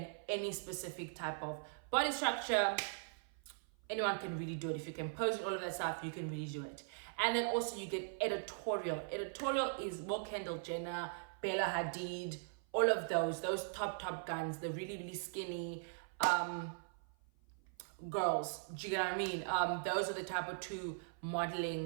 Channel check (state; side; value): silent; left; 51 dB below the other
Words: any specific type of body structure. Anyone can really do it. If you can pose and all of that stuff, you can really do it. And then also you get editorial. Editorial is more Kendall Jenner, Bella Hadid, all of those top guns, the really, really skinny girls. Do you get what I mean? Those are the type of two